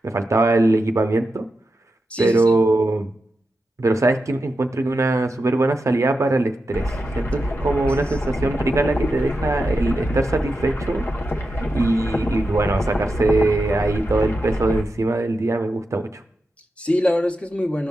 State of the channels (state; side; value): normal; both; correlation 0.89